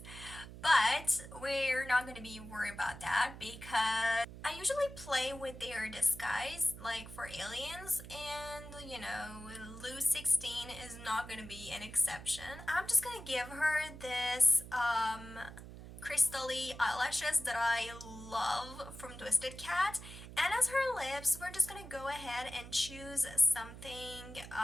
But we're not going to be worried about that because I usually play with their disguise, like for aliens, and you know, Lou 16 is not going to be an exception. I'm just going to give her this crystally eyelashes that I love from Twisted Cat. And as her lips, we're just gonna go ahead and choose something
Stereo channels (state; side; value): noise; right; hum, 14 dB below the sound